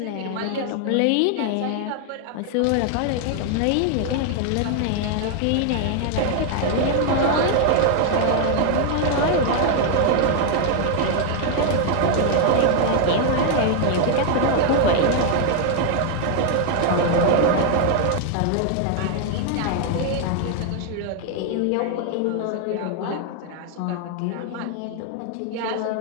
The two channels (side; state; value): both; different; correlation 0.00